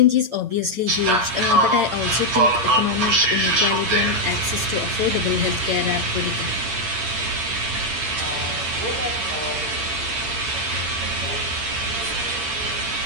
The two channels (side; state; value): left; late; 8.8 ms